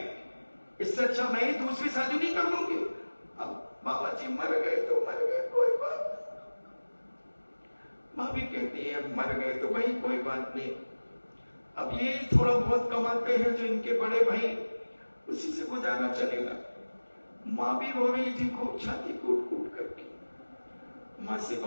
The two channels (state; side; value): inverted; both; correlation -1.00